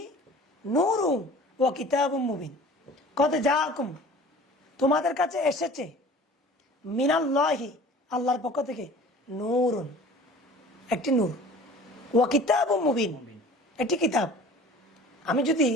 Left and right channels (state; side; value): normal; both; correlation 0.45